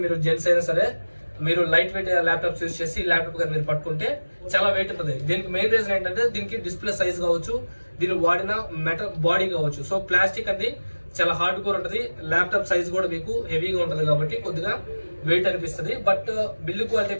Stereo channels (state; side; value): inverted; both; correlation -1.00